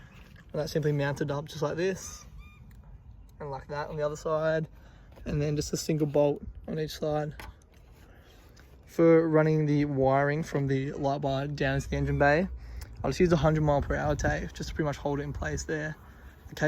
that simply mounted up just like this and like that on the other side, and then just a single bolt on each side. For running the wiring from the light bar down into the engine bay, I'll just use a 100 mph tape just to pretty much hold it in place there. The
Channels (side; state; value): both; identical; correlation 1.00